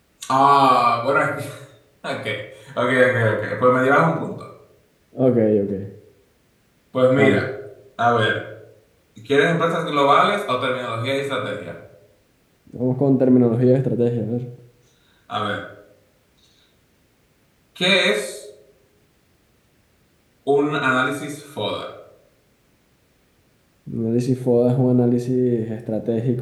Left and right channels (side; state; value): both; identical; correlation 1.00